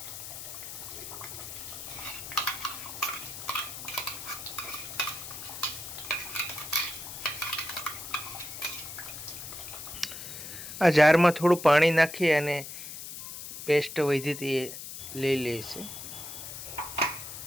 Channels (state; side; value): noise; left; hiss, 10 dB below the sound